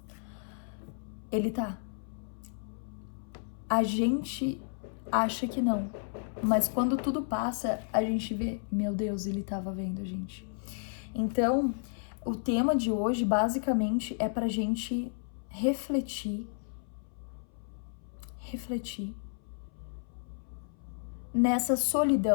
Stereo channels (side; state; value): right; silent; 56 dB below the other